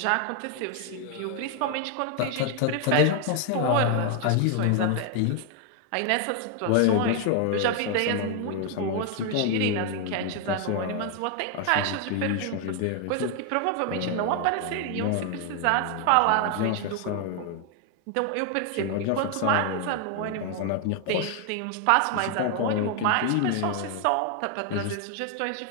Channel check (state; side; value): different; both; correlation 0.00